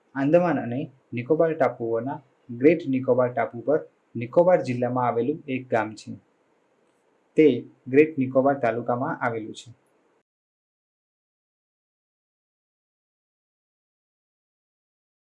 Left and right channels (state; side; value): identical; both; correlation 1.00